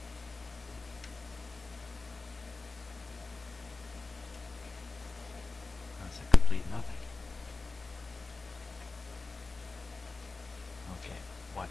That's a complete nothing. Okay,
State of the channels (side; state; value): right; quieter; 3.8 dB